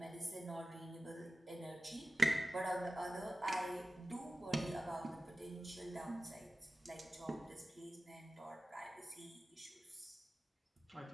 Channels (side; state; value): both; normal; correlation 0.95